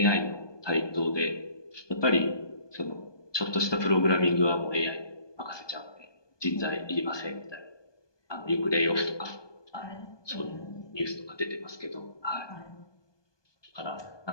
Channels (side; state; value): right; late; 1.2 ms